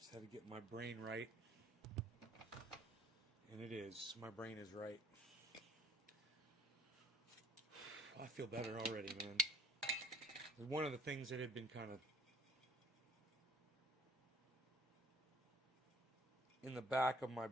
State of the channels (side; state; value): both; normal; correlation 0.56